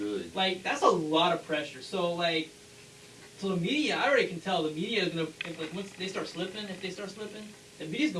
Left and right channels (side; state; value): both; identical; correlation 1.00